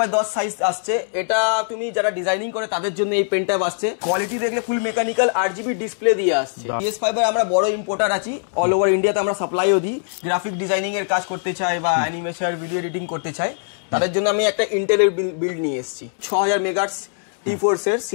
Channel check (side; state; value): right; silent; 65 dB below the other